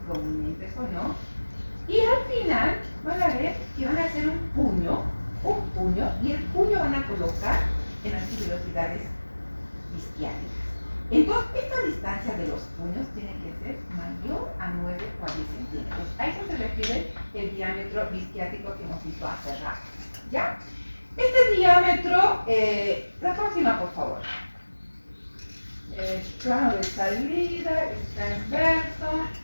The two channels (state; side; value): inverted; both; correlation -1.00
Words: prominentes o no, y al final van a ver que van a hacer un puño, y el puño van a colocar en las tuberosidades isquiáticas. Entonces, esta distancia de los puños tiene que ser mayor a 9 o a 10 centímetros. A eso se refiere el diámetro isquiático que hemos visto hace rato. ¿Ya? Este diámetro, la próxima, por favor. Plano de salida, es transverso.